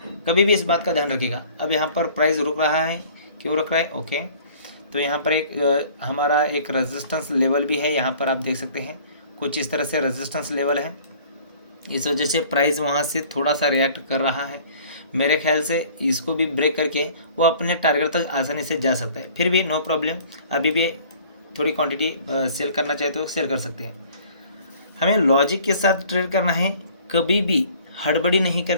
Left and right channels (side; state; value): both; inverted; correlation -0.51